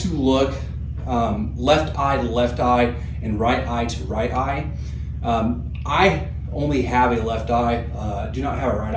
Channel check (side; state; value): both; identical; correlation 1.00